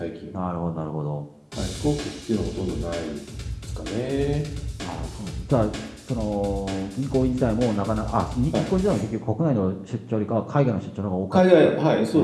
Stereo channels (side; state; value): both; identical; correlation 1.00